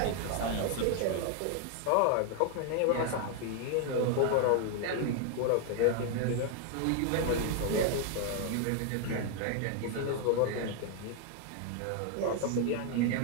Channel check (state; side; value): different; both; correlation 0.00